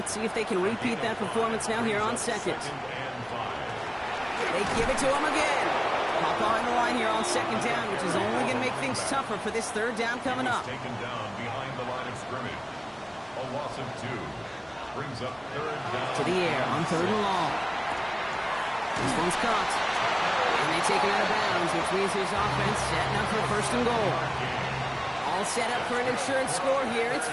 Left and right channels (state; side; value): identical; both; correlation 1.00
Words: see if they can repeat that performance now here on 2nd. They give it to him again. Pop behind the line here on 2nd down, which is only going to make things tougher for this 3rd down coming up. Taken down behind the line of scrimmage. A loss of 2 brings up 3rd down. To the air on 3rd and long. This one's caught. And they take him out of bounds, which means his offense setting up for 1st and goal. All set up for an insurance score here. It's